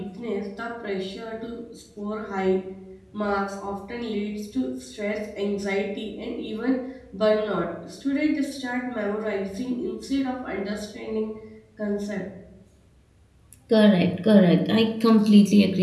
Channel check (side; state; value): both; identical; correlation 1.00